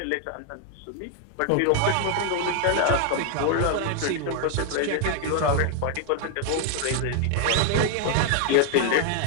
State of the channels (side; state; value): both; different; correlation 0.00